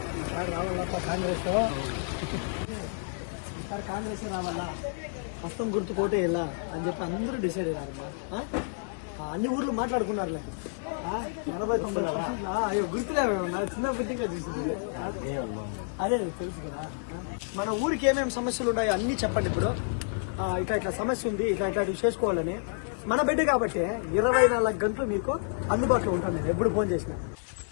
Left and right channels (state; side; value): silent; right; 58 dB below the other